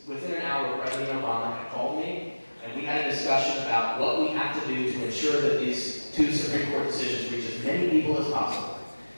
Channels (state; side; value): inverted; both; correlation -1.00